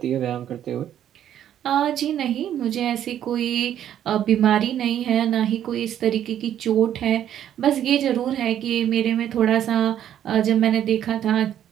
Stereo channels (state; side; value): quieter; left; 10.6 dB